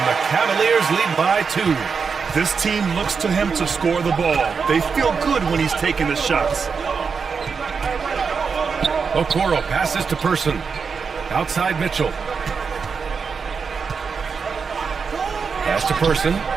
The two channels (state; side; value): quieter; left; 5.6 dB